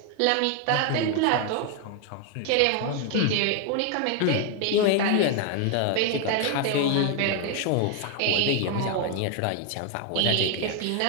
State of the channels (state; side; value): different; both; correlation 0.01